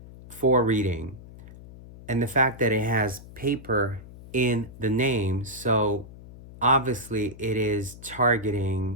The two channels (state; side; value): noise; left; hum, 17 dB below the sound